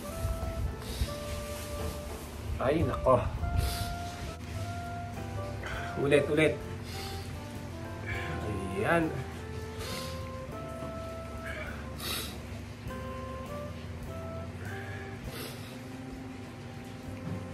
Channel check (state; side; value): identical; both; correlation 1.00